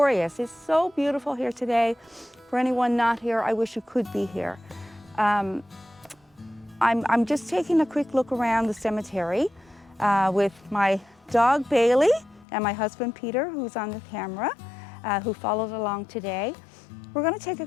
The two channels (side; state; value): right; drops out; at 12.5 s